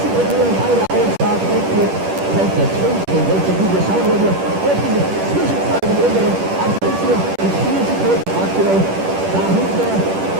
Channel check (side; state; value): left; late; 10 ms